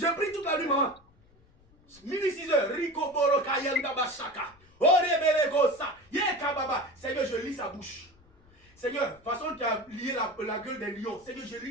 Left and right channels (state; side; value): noise; left; rumble, 29 dB below the sound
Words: prie toute la nuit, maman. Minuit 6 heures. Rico Boro Kayanda Bashaka. Seigneur, je lis sa bouche. Seigneur, façon tu as lié la gueule des lions. Seigneur, je lis